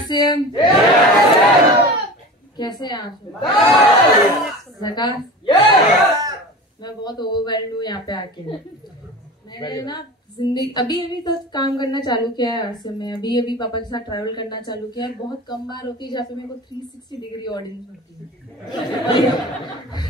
कैसे हैं आप? मैं बहुत ओवरवेल्ड हूँ यहाँ पे आके। मैंने ना जिंदगी अभी तक काम करना चालू किया है आरसीएम में। अभी पापा के साथ ट्रैवल करना चालू किया है। बहुत कम बार होती है जहाँ पे मेरे को 360 डिग्री ऑडियंस होती है।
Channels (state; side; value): normal; both; correlation 0.34